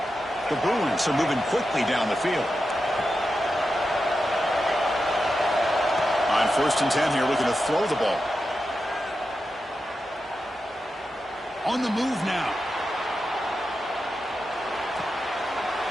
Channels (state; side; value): normal; both; correlation 0.89